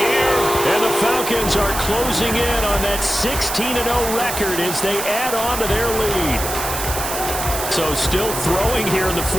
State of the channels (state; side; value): noise; right; hiss, 5 dB below the sound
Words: And the Falcons are closing in on that 16-0 record as they add on to their lead. So still throwing here in the